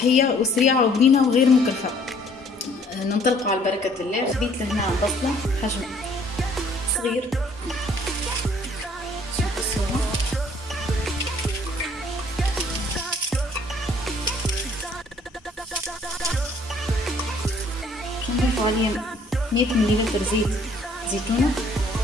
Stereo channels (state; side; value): normal; both; correlation 0.60